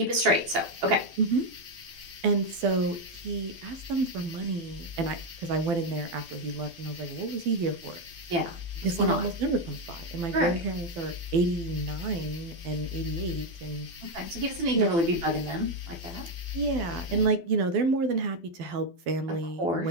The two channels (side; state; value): left; late; 12 ms